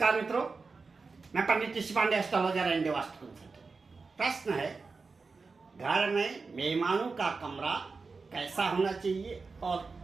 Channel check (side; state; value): left; quieter; 4.3 dB